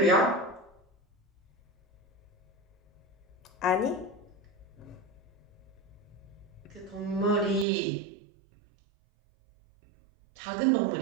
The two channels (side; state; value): left; drops out; at 7.7 s